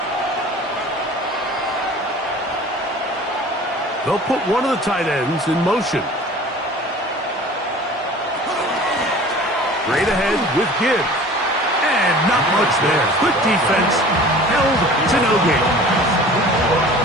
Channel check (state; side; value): normal; both; correlation 0.44